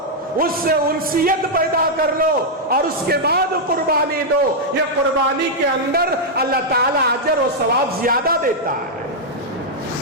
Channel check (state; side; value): normal; both; correlation -0.04